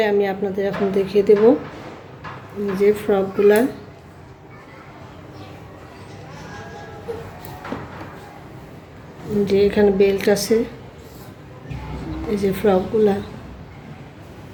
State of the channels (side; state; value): both; identical; correlation 1.00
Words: আমি আপনাদের এখন দেখিয়ে দেব। যে ফ্রকগুলা যে এখানে বেল্ট আছে, এই যে ফ্রকগুলা